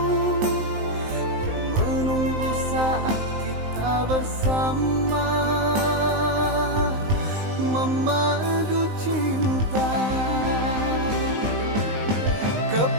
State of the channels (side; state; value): left; late; 19 ms